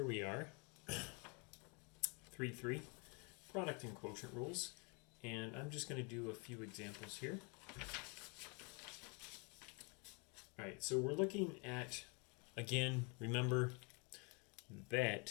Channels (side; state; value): right; quieter; 33.2 dB